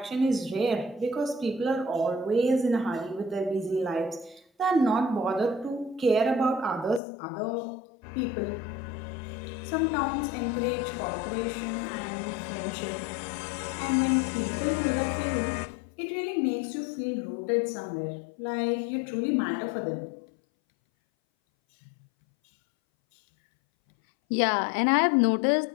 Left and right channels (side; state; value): right; drops out; at 7.0 s